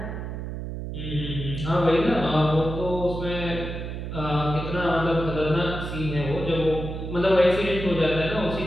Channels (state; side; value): noise; right; hum, 6 dB below the sound